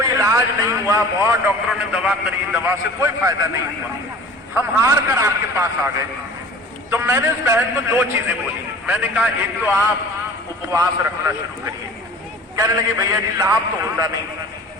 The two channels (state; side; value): normal; both; correlation 0.43